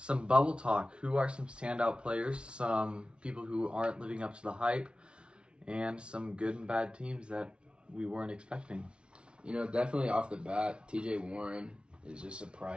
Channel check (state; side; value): late; left; 0.058 ms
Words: bubble talk. Who are some standout players, some people who aren't living up to the hype, and some good and bad teams that we weren't expecting? Definitely off the bat, TJ Warren is just